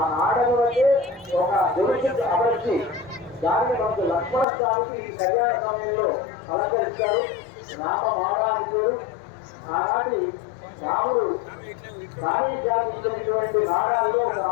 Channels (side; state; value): right; drops out; at 4.5 s